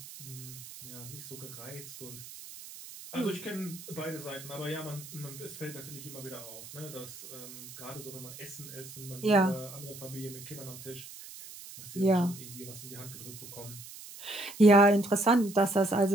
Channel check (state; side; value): noise; right; hiss, 14 dB below the sound